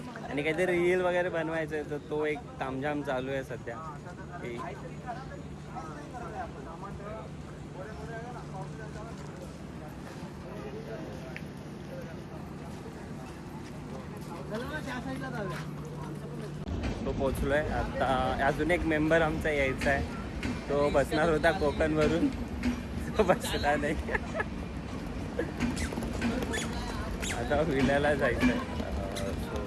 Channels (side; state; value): both; identical; correlation 1.00